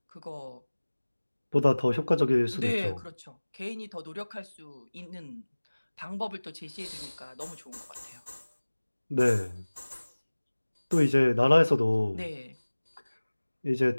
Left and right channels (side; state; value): both; inverted; correlation -1.00